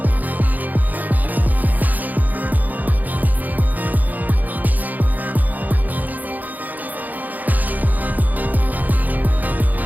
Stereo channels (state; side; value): late; left; 0.082 ms